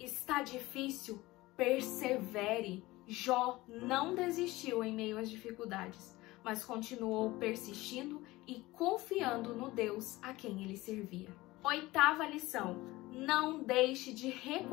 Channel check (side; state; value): right; quieter; 19.4 dB